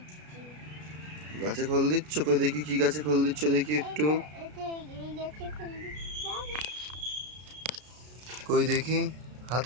গাছে খোল দিচ্ছ? কই দেখি কি গাছে খোল দিচ্ছ, দেখি একটু। কই দেখি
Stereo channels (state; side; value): late; left; 33 ms